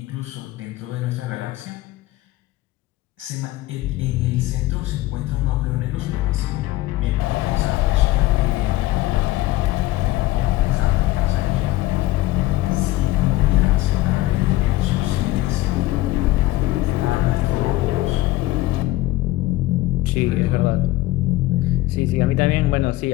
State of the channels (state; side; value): quieter; right; 17.4 dB